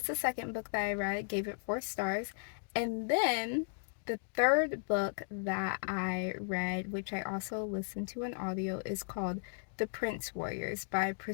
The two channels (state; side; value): silent; right; digital silence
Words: the second book that I read, gave it 4 stars. And then the third book that I read, which I also listened to an audio, is called The Prince Warriors by